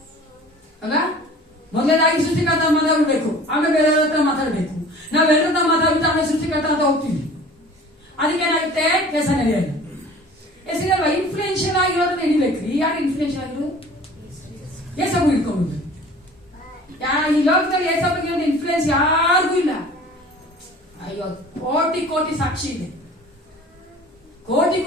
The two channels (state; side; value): normal; both; correlation 0.45